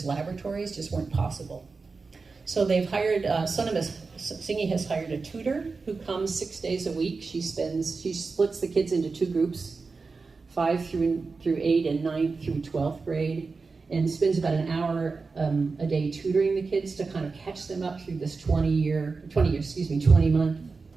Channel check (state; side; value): quieter; left; 4.3 dB